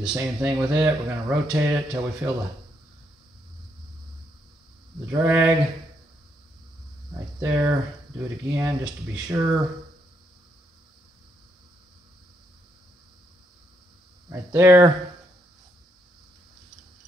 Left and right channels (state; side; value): normal; both; correlation 0.76